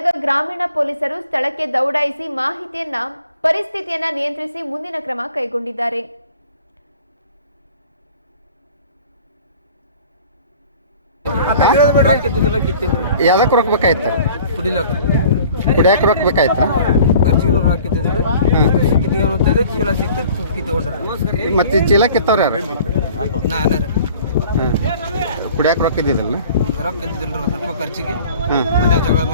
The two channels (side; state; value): both; inverted; correlation -0.49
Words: ಗ್ರಾಮೀಣ ಪೊಲೀಸರು ಸ್ಥಳಕ್ಕೆ ದೌಡಾಯಿಸಿ ಪರಿಸ್ಥಿತಿಯನ್ನ ನಿಯಂತ್ರಿಸಿ ಮುಂದಿನ ಕ್ರಮ ಕೈಗೊಂಡಿದ್ದಾರೆ. ಯಾವ್ದಕ್ಕೆ ರೊಕ್ಕಬೇಕಾಯ್ತು? ಕುಡಿಯಕ್ಕೆ ರೊಕ್ಕಬೇಕಾಯ್ತು. ಮತ್ತೆ ಚೀಲ ಕಿತ್ತವ್ರ ಯಾರು? ಕುಡಿಯಕ್ಕೆ ರೊಕ್ಕ ಇದ್ದಿದ್ದಲ್ಲ?